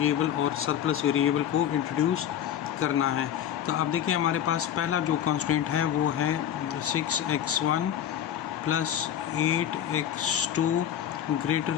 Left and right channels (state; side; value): quieter; right; 10.1 dB